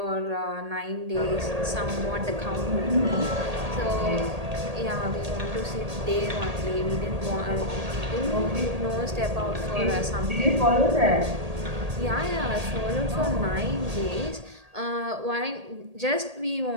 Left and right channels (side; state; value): left; late; 1.8 ms